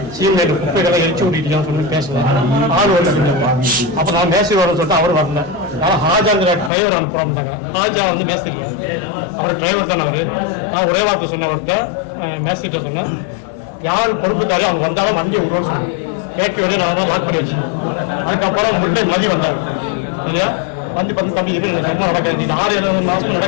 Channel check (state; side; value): drops out; right; at 6.7 s